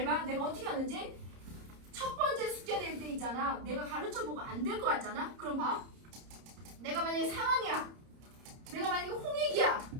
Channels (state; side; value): late; left; 30 ms